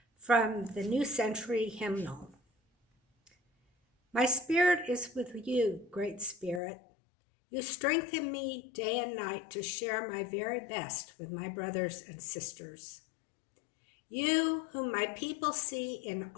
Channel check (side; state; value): right; drops out; at 6.6 s